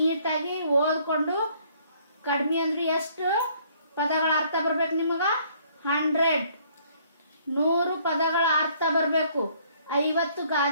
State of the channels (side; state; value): both; inverted; correlation -0.62